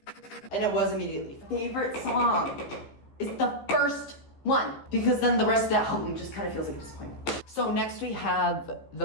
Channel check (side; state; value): right; late; 15 ms